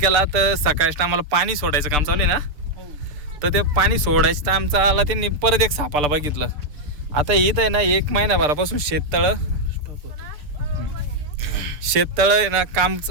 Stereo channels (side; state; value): left; late; 6.8 ms